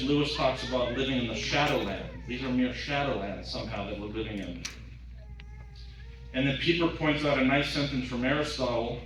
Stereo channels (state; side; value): identical; both; correlation 1.00